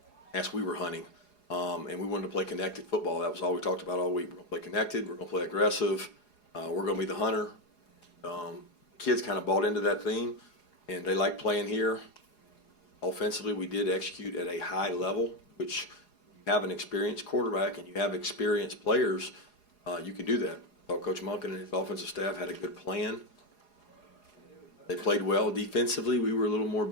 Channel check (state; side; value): late; right; 4.8 ms